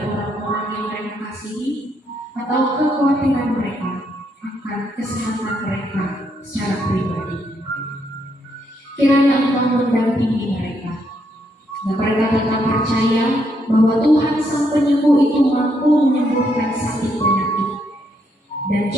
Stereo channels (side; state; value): both; normal; correlation 0.76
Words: orang-orang yang mereka kasihi, atau kekhawatiran mereka akan kesehatan mereka secara pribadi, kiranya Engkau mendampingi mereka, dan mereka tetap percaya bahwa Tuhan Sang Penyembuh itu mampu menyembuhkan sakit penyakit, dan